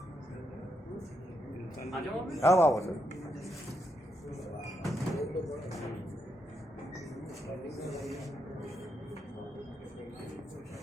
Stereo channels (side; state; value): both; normal; correlation 0.81